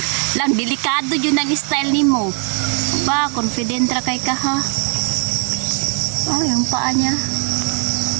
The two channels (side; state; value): left; quieter; 39.5 dB